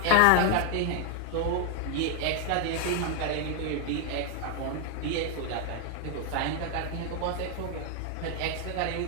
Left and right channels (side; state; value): both; different; correlation 0.00